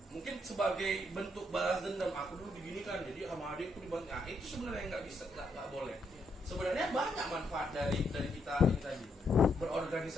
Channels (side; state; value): both; normal; correlation 0.76